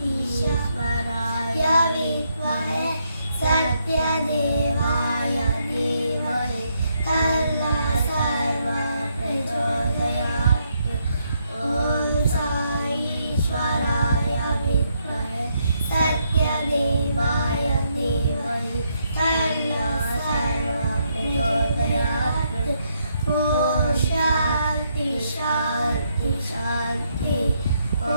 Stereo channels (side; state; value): both; inverted; correlation -0.76